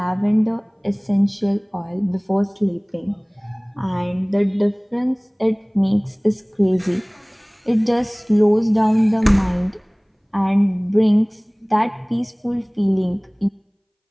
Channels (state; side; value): identical; both; correlation 1.00